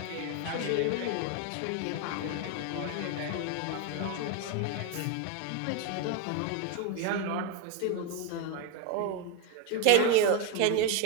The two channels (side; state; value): both; different; correlation 0.01